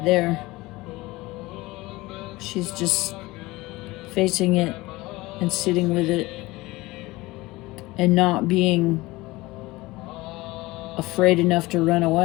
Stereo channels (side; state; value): right; quieter; 20.5 dB